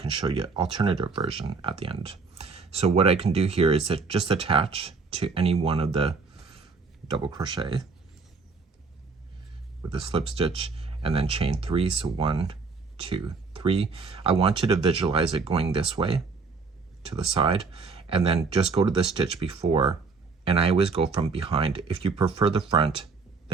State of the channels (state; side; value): quieter; left; 4.6 dB